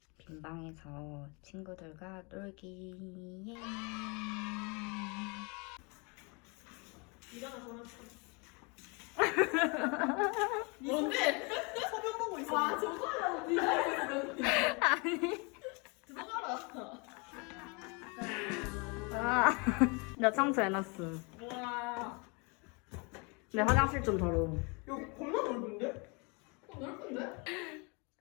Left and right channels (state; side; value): quieter; right; 31.2 dB